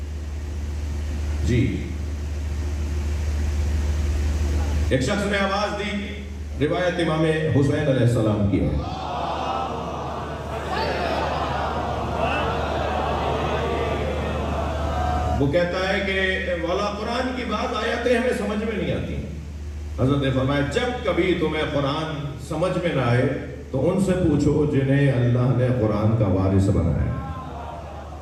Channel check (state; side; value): identical; both; correlation 1.00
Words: جی ایک شخص نے آواز دی، روایت امام حسین علیہ السلام کی ہے۔ وہ کہتا ہے کہ والا قرآن کی بعض آیتیں ہمیں سمجھ میں نہیں آتی۔ حضرت نے فرمایا جب کبھی تمہیں قرآن سمجھ میں نہ آئے تو ان سے پوچھو جنہیں اللہ نے قرآن کا وارث بنایا۔